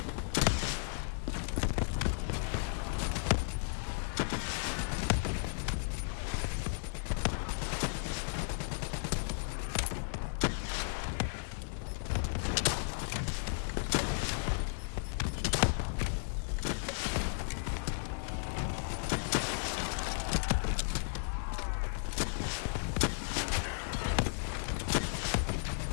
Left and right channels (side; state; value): right; silent; digital silence